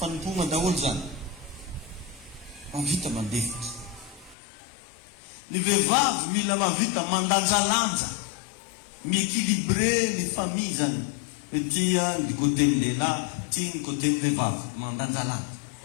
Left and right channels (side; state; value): right; drops out; at 4.4 s